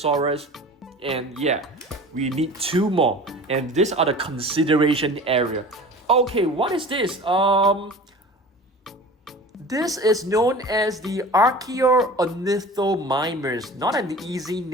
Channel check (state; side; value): normal; both; correlation 0.39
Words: and yeah, we need 2 more. And these are the consideration area. Okay, what is this? This is known as the Archaeornithomimus. Not an easy